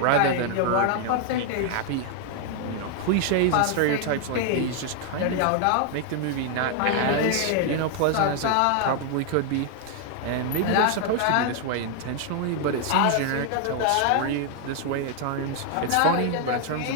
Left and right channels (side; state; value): both; different; correlation 0.00